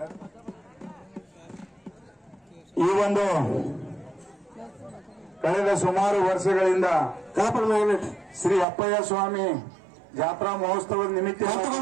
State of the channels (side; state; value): left; drops out; at 8.7 s